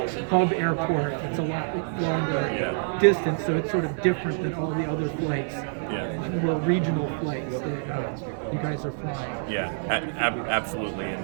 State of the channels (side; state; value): left; silent; digital silence